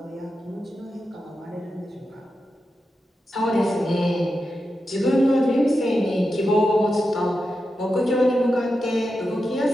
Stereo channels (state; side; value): normal; both; correlation 0.89